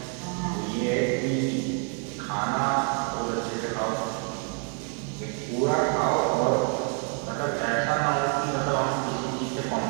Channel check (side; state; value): left; quieter; 39.9 dB